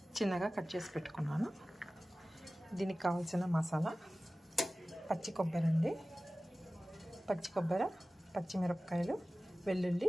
చిన్నగా కట్ చేసి పెట్టుకున్నాను. దీనికి కావాల్సిన మసాలా పచ్చి కొబ్బరి అండి, పచ్చి కొబ్బరి, పచ్చిమిరపకాయలు,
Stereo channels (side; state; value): both; normal; correlation 0.97